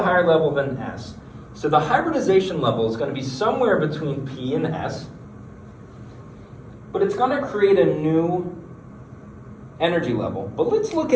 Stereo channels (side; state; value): both; identical; correlation 1.00